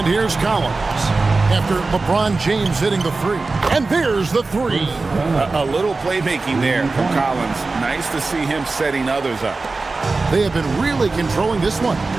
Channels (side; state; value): left; quieter; 3.7 dB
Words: here's Collins after LeBron James hitting the 3. And there's the 3. A little playmaking there from Collins. Nice to see him setting others up. They have been really controlling this one.